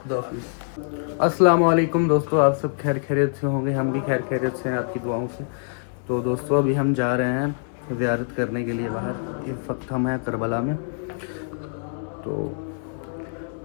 खुदा हाफिज़। अस्सलाम वालेकुम दोस्तों, आप सब खैर खैरियत से होंगे। हम भी खैर खैरियत से हैं आपकी दुआओं से। तो दोस्तों अभी हम जा रहे हैं ज़ियारत करने के लिए बाहर। इस वक्त हम हैं करबला में। तो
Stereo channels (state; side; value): silent; right; 62 dB below the other